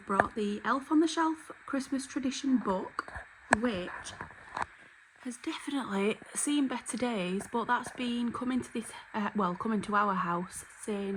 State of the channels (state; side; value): identical; both; correlation 1.00